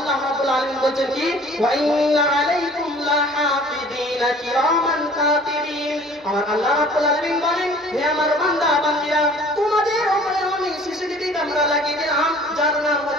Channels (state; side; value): normal; both; correlation 0.50